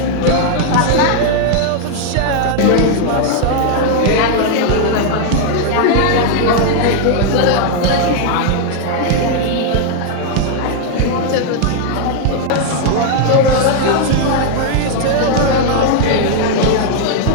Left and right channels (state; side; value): different; both; correlation 0.00